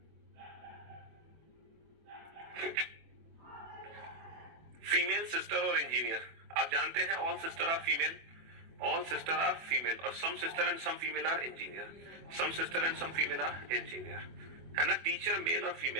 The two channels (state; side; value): late; left; 24 ms